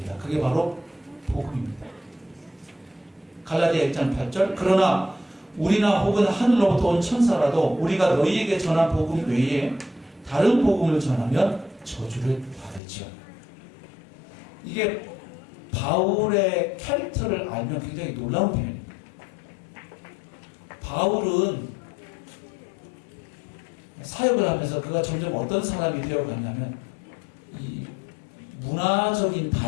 그게 바로 복음입니다. 갈라디아 1장 8절 그러나 우리나 혹은 하늘로부터 온 천사라도 우리가 너희에게 전한 복음 외에 다른 복음을 전하면 저주를 받을지어다. 이게 바울의 캐릭터를 알면 굉장히 놀라운 표현입니다. 바울은 사역을 하면서 그가 점점 어떤 사람이 되어갔냐면 이 문화적인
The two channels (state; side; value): drops out; right; at 12.8 s